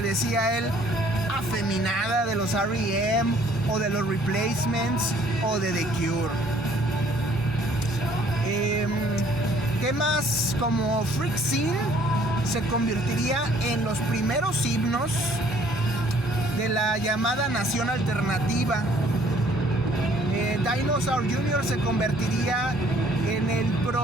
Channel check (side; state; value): both; normal; correlation 0.60